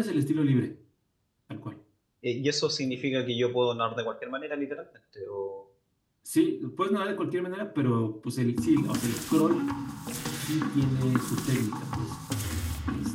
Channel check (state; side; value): identical; both; correlation 1.00